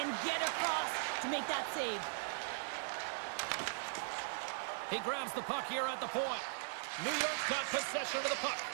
get across to make that save. He grabs the puck here at the point. New York's got possession of the puck.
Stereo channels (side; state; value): left; silent; digital silence